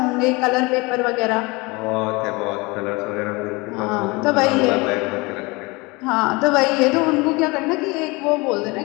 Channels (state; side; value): quieter; right; 25.1 dB